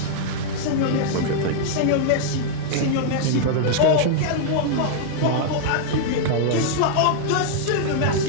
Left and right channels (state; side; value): different; both; correlation -0.01